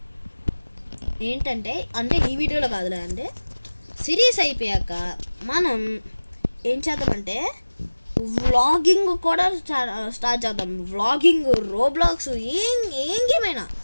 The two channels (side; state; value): both; inverted; correlation -1.00